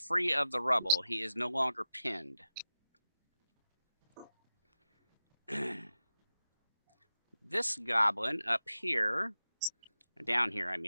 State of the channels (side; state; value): both; inverted; correlation -0.90